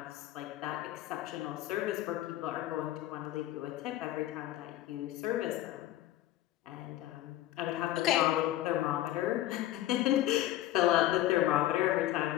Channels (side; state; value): right; quieter; 14.5 dB